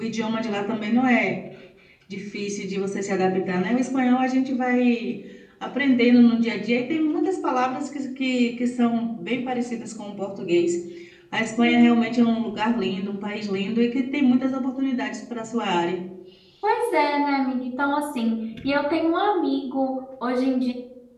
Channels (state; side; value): identical; both; correlation 1.00